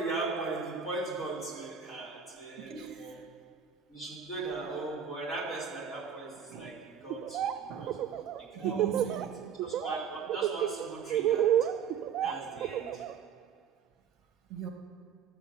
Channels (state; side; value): quieter; left; 7.4 dB